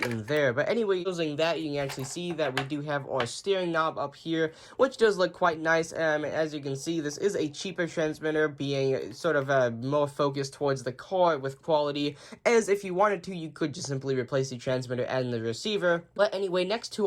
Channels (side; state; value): both; identical; correlation 1.00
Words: in there. But anyway, using that, you can actually see that we do have our steering knob up here, which does look quite nice. As you can see, this is a cheaper transmitter, being sort of more focused towards the car with quality, as if you wanted to, you could just simply replace the transmitter and the receiver. But anyway, next